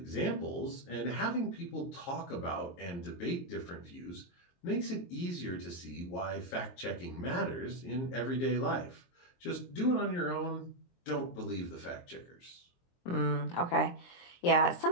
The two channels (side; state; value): right; late; 23 ms